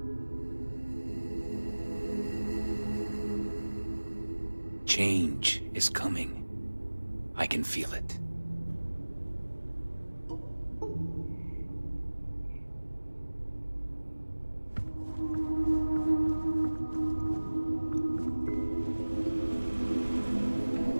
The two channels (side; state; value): both; inverted; correlation -1.00